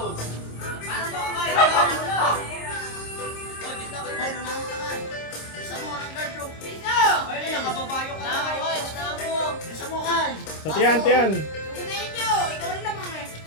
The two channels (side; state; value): right; late; 26 ms